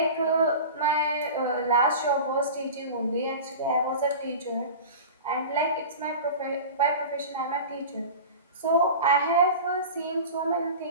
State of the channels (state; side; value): inverted; both; correlation -0.33